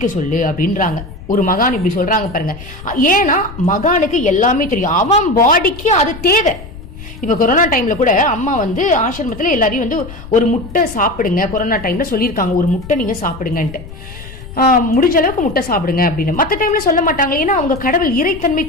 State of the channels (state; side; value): noise; left; rumble, 14 dB below the sound